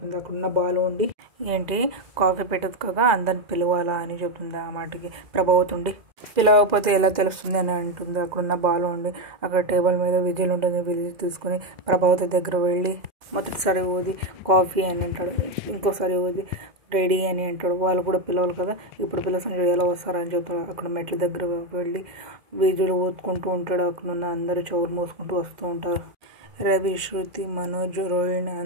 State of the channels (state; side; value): late; left; 2.1 ms